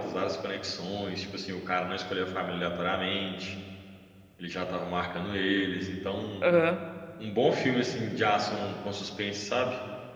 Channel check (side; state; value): both; identical; correlation 1.00